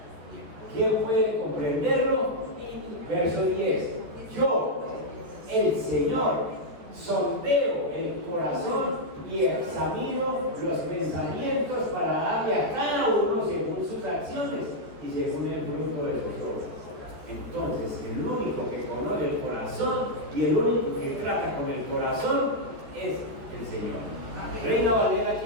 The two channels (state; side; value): late; left; 14 ms